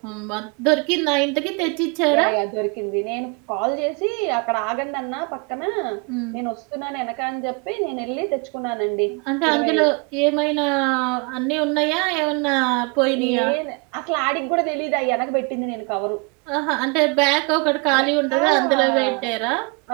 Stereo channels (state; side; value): quieter; left; 32.3 dB